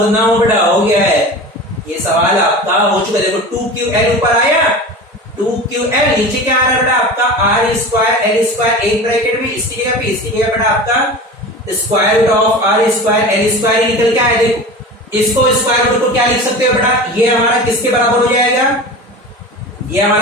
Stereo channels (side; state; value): both; normal; correlation 0.33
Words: ना हो बेटा, हो गया है ये सवाल आपका, हो चुका। देखो 2QL ऊपर आया, 2QL नीचे क्या आ रहा है बेटा आपका? R स्क्वायर L स्क्वायर एक ब्रैकेट में, इसकी जगह पे, इसकी जगह बेटा आपका square root of R square L square निकल के आया। देखो इसको स्क्वायर रूट को क्या लिख सकते हो बेटा? ये हमारा किसके बराबर हो जाएगा? ये